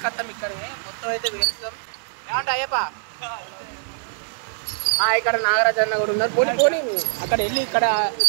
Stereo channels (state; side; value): silent; left; digital silence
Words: ఇక్కడనే. మొత్తం అయితే వేస్తాం. ఏమంటే అయ్యప్ప ఇక్కడ నాగరాజ్ అన్న కూడా ఉన్నారు. పోనీ పోనీ అక్కడ వెళ్ళి ఇక్కడ